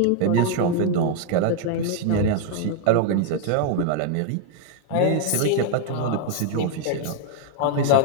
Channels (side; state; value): both; different; correlation 0.01